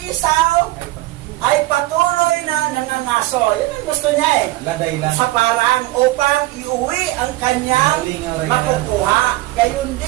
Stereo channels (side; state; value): left; quieter; 18.1 dB